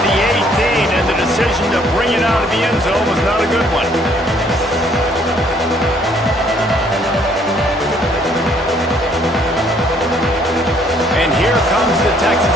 the 18, and the decision to bring it out of the end zone was not a good one. And here comes the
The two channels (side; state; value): both; normal; correlation 0.63